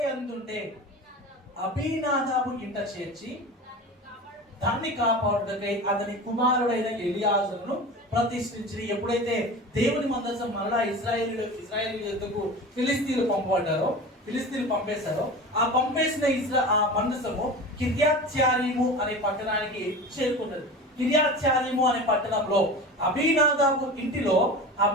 యందుండే అబీనాదాబు ఇంట చేర్చి దాన్ని కాపాడుటకై అతని కుమారుడైన ఎలియాజరును ప్రతిష్ఠించి, ఎప్పుడైతే దేవుని మందసం మరలా ఇశ్రాయేలీయులకు ఫిలిస్తీన్లు పంపేశారో ఆ పంపేసిన ఆ మందసము కిర్యత్యారీము అనే పట్టణానికి చేరుకున్నది. కిర్యత్యారీము అనే పట్టణంలో అబీనాదాబు ఇంటిలో ఆ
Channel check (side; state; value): both; normal; correlation 0.32